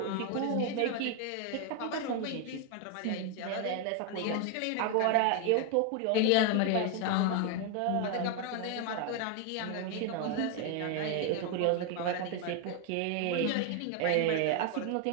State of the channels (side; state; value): both; different; correlation 0.01